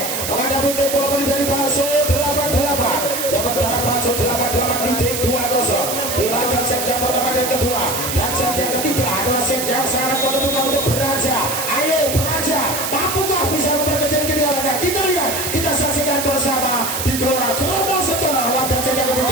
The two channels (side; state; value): right; noise; hiss, 3 dB below the sound